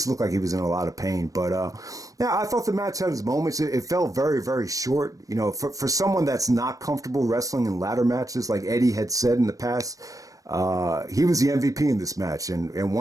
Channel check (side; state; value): left; late; 0.17 ms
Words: looked like he was in a lot of pain. But I thought the match had its moments. It felt very, very short. For someone that's not comfortable wrestling in ladder matches, like Eddie had said in the past, he was the MVP in this match, and